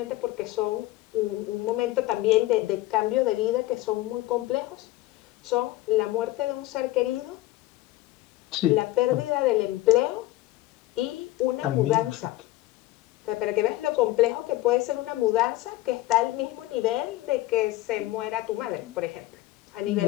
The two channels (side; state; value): right; quieter; 17.0 dB